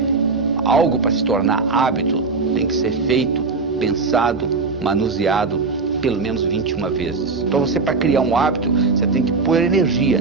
algo para se tornar hábito tem que ser feito, pensado, manuseado pelo menos 21 vezes. Então você, para criar um hábito, você tem que pôr energia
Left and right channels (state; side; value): quieter; left; 4.2 dB